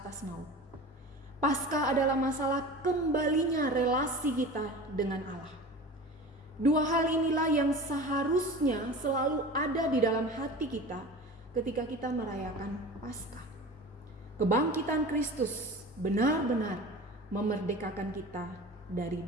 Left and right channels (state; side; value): normal; both; correlation 0.35